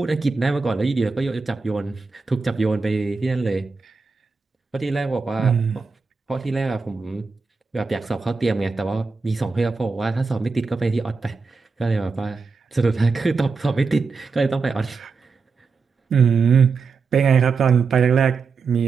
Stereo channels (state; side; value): quieter; left; 4.6 dB